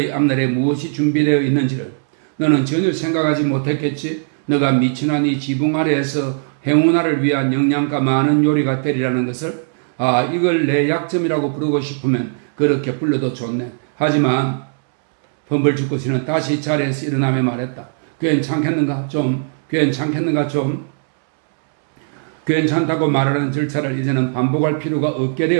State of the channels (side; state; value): left; silent; 67 dB below the other